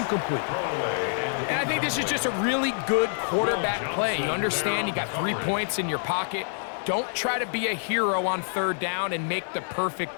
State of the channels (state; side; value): silent; right; digital silence